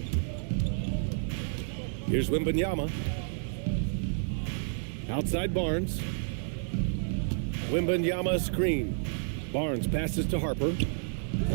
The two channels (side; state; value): left; silent; 58 dB below the other